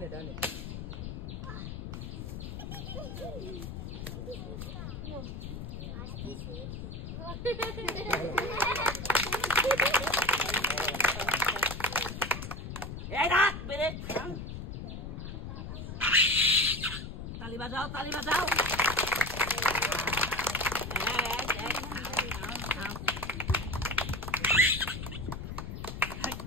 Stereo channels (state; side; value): noise; left; rumble, 7 dB below the sound